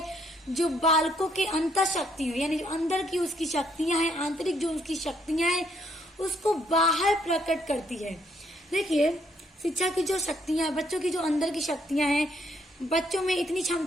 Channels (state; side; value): normal; both; correlation 0.71